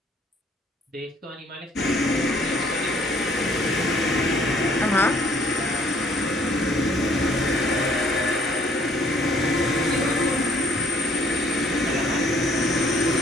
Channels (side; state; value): both; normal; correlation 0.61